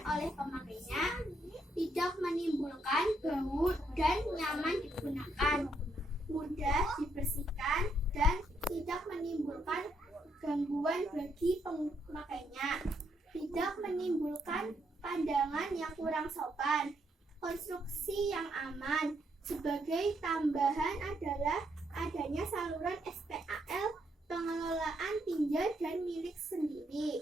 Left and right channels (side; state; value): both; normal; correlation 0.76